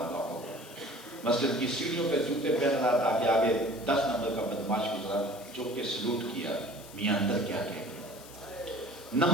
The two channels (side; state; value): left; noise; hiss, 18 dB below the sound